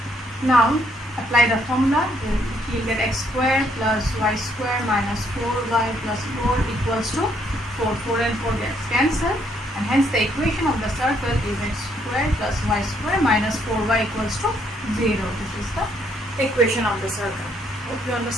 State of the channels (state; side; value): normal; both; correlation 0.70